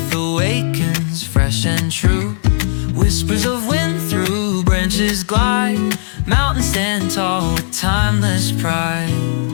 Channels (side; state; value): right; silent; digital silence